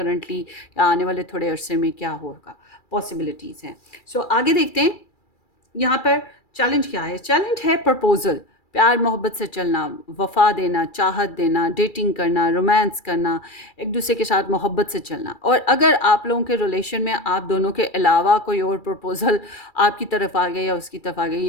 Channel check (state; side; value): late; right; 2.3 ms